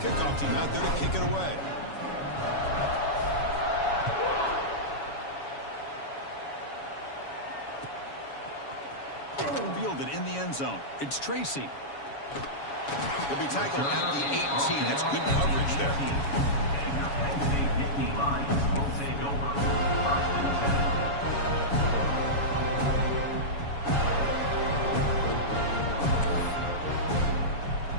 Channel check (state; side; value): late; right; 7.1 ms